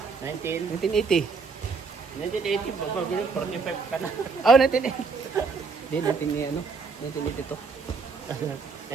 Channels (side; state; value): left; quieter; 4.7 dB